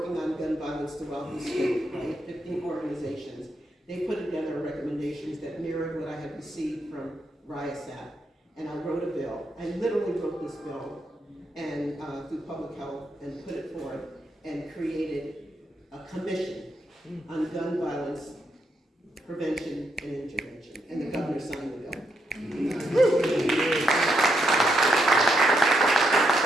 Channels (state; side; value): normal; both; correlation 0.79